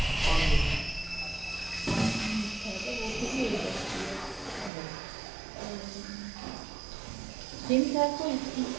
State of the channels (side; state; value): left; drops out; at 4.7 s